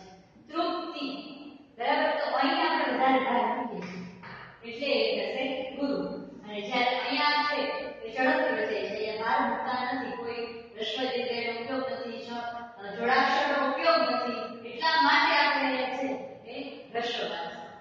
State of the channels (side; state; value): both; identical; correlation 1.00